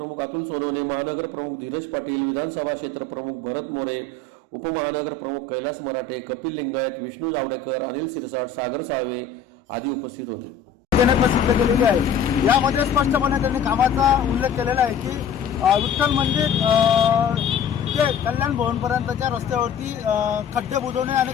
अतुल सोनवणे, महानगर प्रमुख धीरज पाटील, विधानसभा क्षेत्र प्रमुख भरत मोरे, उपमहानगर प्रमुख कैलास मराठे, कपिल लिंगायत, विष्णू जावडेकर, अनिल सिरसाट, सागर साळवे आदी उपस्थित होते। प्रसिद्ध केलेली आहे। यामध्ये स्पष्टपणे त्यांनी कामाचा उल्लेख केलेला आहे की विठ्ठल मंदिर ते कल्याण भवनपर्यंतच्या रस्त्यावरती खड्डे बुजवणे आणि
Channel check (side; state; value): right; quieter; 4.6 dB